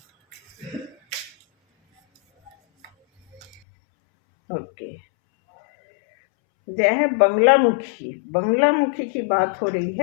ओके, यह है बंगलामुखी। बंगलामुखी की बात हो रही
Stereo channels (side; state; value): right; drops out; at 3.6 s